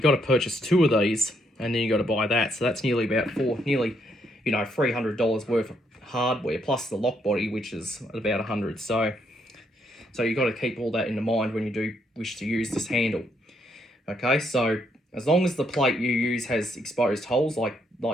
got to purchase 2 of these, and then you got to buy that. So that's nearly about $300 worth of hardware, plus the lock body, which is about $100. So you've got to keep all that in mind when you do wish to use this handle. Okay, so as long as the plate you use has exposed holes like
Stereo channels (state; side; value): normal; both; correlation 0.74